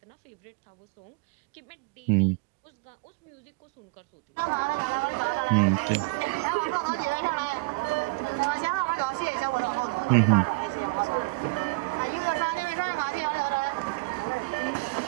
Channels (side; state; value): left; quieter; 27.1 dB